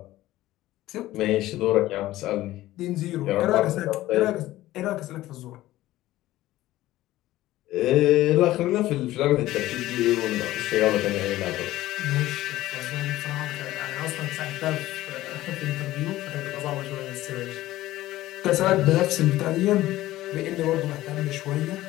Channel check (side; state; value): right; quieter; 15.9 dB